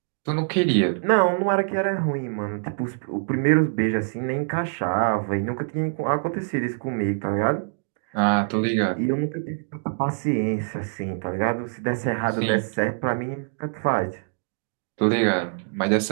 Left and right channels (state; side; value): silent; left; digital silence